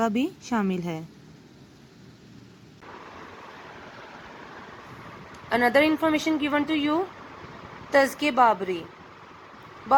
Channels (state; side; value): identical; both; correlation 1.00